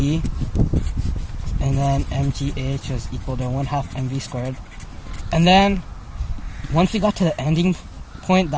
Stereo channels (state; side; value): identical; both; correlation 1.00